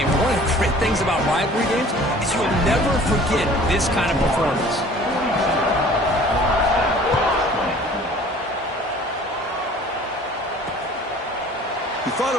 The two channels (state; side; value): normal; both; correlation 0.49